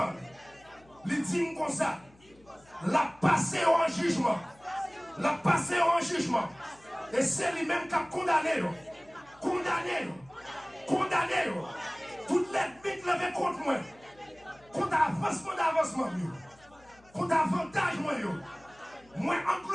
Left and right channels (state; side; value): noise; left; hum, 28 dB below the sound